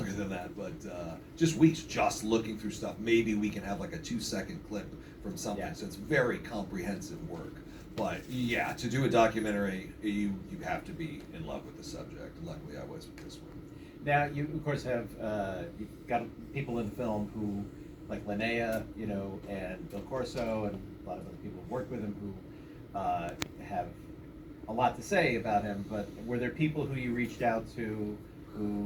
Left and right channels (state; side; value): identical; both; correlation 1.00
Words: than that, but just weeks just looking through stuff. Maybe we can have like a 2-second clip from something. Yeah. So it's very comprehensive work. But yeah, to do a documentary, you have to be in love with the subject. Luckily, I was with this one. Now, you of course have you've got people in the film who, like Linnea, and Bill Corso, and a lot of other people who worked with him who have a lot to say about him. But were there people who you reached out to